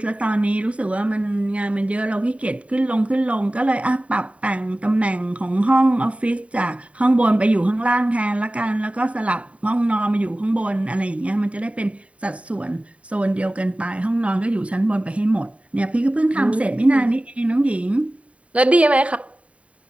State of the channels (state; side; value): late; left; 0.065 ms